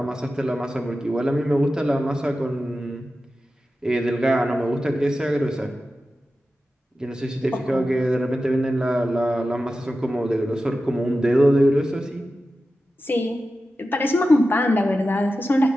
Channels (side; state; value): both; normal; correlation 0.93